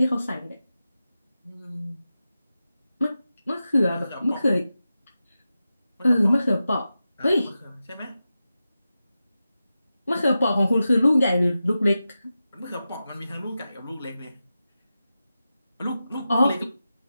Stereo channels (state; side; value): inverted; both; correlation -0.92